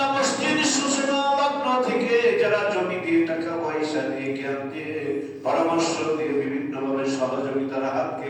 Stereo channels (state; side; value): identical; both; correlation 1.00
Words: মসজিদ সূচনা লগ্ন থেকে যারা জমি দিয়ে টাকা পয়সা দিয়ে জ্ঞান দিয়ে পরামর্শ দিয়ে বিভিন্ন ভাবে সহযোগিতার হাতকে